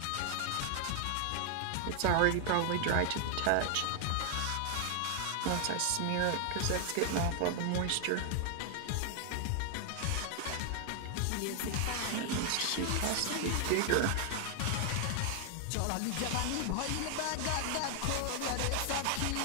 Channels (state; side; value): different; both; correlation 0.00